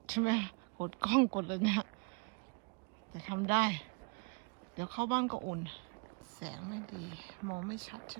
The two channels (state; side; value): quieter; left; 32.0 dB